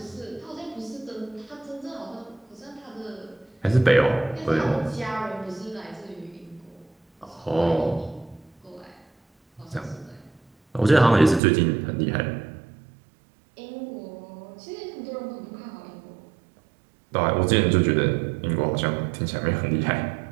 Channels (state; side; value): drops out; left; at 11.4 s